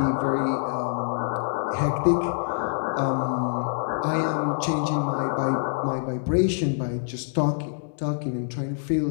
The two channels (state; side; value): silent; right; digital silence